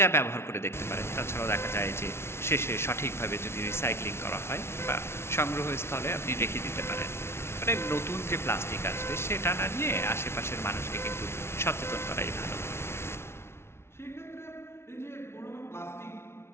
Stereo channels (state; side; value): late; right; 0.12 ms